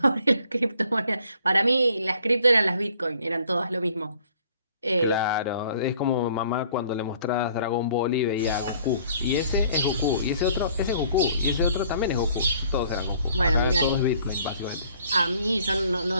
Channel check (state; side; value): inverted; both; correlation -0.59